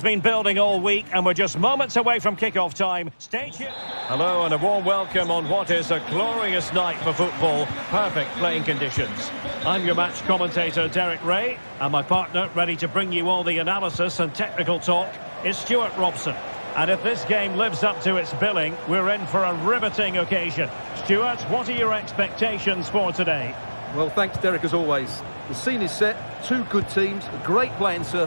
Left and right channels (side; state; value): both; inverted; correlation -1.00